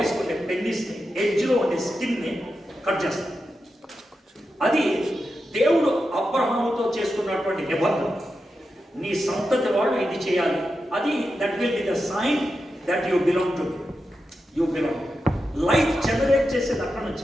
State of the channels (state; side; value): normal; both; correlation 0.89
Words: ఉండే పెన్నిస్ని, ఎడ్జ్లో ఉండే స్కిన్ని కట్ చేస్తారు. అది దేవుడు అబ్రహాముతో చేసుకున్నటువంటి నిబంధన. నీ సంతతి వాళ్ళు ఇది చేయాలి, అది that will be the sign that you belong to, you belong. Life generate చేసేది అక్కడ